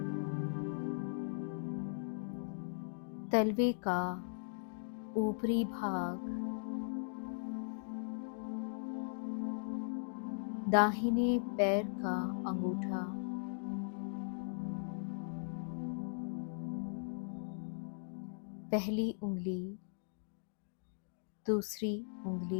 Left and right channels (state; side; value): silent; right; digital silence